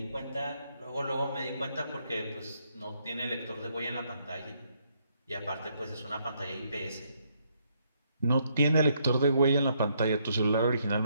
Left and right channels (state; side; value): inverted; both; correlation -0.73